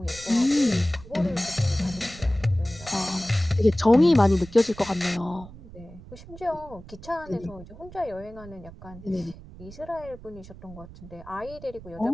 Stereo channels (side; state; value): right; noise; rumble, 17 dB below the sound